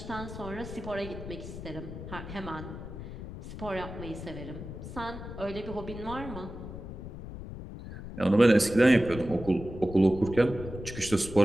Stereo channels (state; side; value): noise; left; rumble, 10 dB below the sound